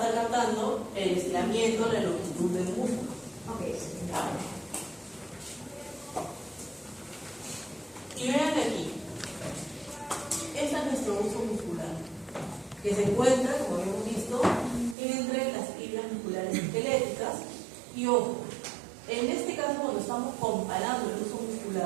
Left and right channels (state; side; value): drops out; left; at 15.0 s